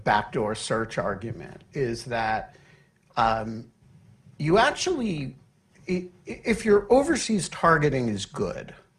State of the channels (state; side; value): identical; both; correlation 1.00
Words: search argument is that you actually, if your overseas targeting is good,